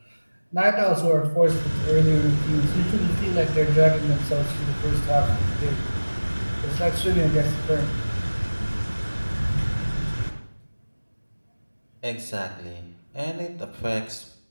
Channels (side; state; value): both; inverted; correlation -1.00